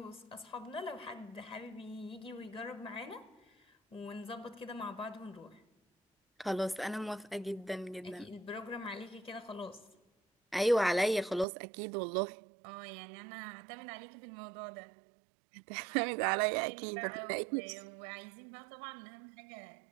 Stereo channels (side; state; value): left; drops out; at 11.5 s